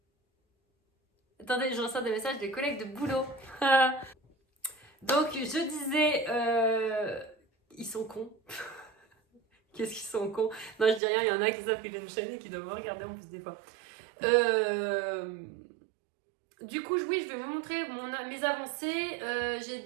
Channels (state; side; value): drops out; left; at 11.0 s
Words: Attendez, je reçois des messages des collègues de boulot. Donc je disais, ils sont cons. Qu'est-ce qu'ils sont cons? Non, je dis rien, il y en a qui savent que j'ai une chaîne et qui doivent me regarder en plus des fois. Du coup, oui, je vais vous montrer mes avancées. J'ai